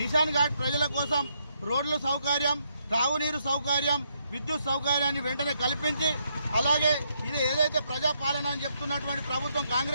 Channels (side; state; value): both; inverted; correlation -0.76